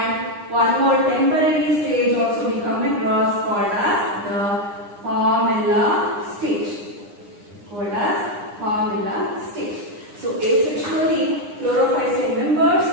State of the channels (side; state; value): left; late; 9.8 ms